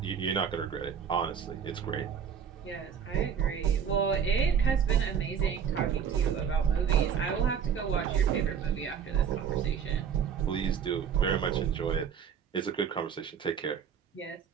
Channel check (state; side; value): quieter; left; 7.6 dB